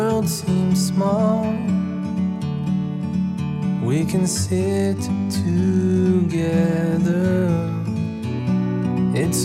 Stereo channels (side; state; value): both; identical; correlation 1.00